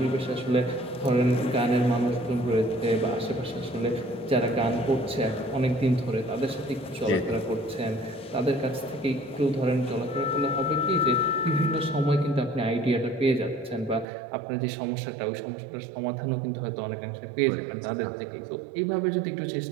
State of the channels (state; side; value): drops out; left; at 14.1 s